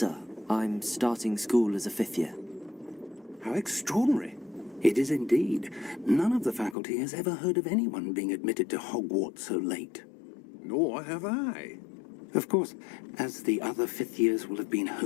I'm starting school as a 5th year. How extraordinary. It is indeed. None of the faculty has ever heard of anyone being admitted to Hogwarts so late. Nor have I. Of course, as the other 5th years will have been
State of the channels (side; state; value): right; drops out; at 6.8 s